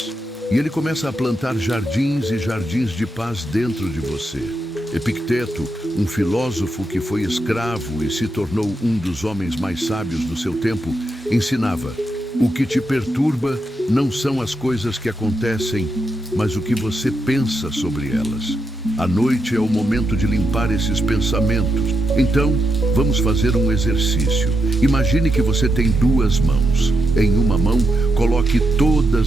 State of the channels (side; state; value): both; normal; correlation 0.84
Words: E ele começa a plantar jardins e jardins de paz dentro de você. Epicteto, um filósofo que foi escravo e se tornou um dos homens mais sábios do seu tempo, ensinava: o que te perturba não são as coisas que acontecem, mas o que você pensa sobre elas. A noite é o momento de limpar esses pensamentos. Então, vamos fazer um exercício. Imagine que você tem duas mãos. Em uma mão, coloque